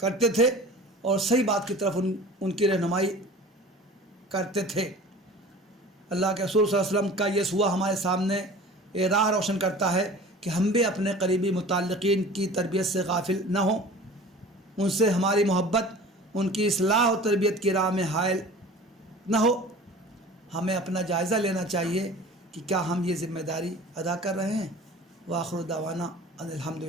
تھے اور صحیح بات کی طرف ان کی رہنمائی کرتے تھے. اللہ کے رسول صلی اللہ علیہ وسلم کا یہ سوا ہمارے سامنے یہ راہ روشن کرتا ہے کہ ہم بھی اپنے قریبی متعلقین کی تربیت سے غافل نہ ہوں، ان سے ہماری محبت، ان کی اصلاح و تربیت کی راہ میں حائل نہ ہو۔ ہمیں اپنا جائزہ لینا چاہیے کہ کیا ہم یہ ذمہ داری ادا کر رہے ہیں۔ وآخر دعوانا ان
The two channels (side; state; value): both; normal; correlation 0.41